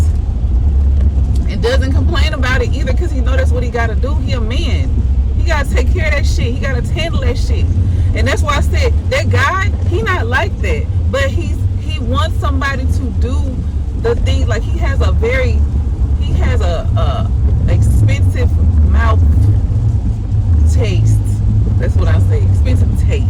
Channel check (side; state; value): both; identical; correlation 1.00